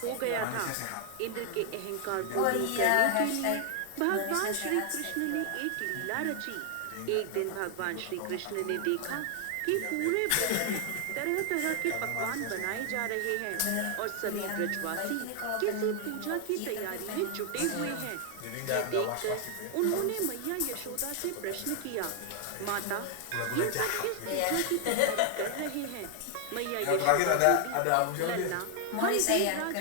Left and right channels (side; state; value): both; different; correlation 0.00